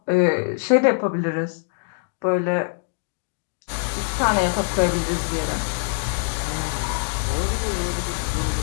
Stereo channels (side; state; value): right; silent; digital silence